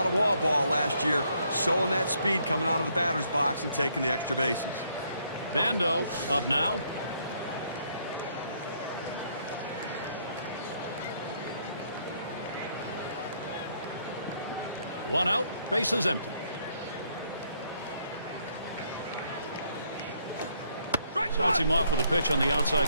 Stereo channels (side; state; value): both; inverted; correlation -0.70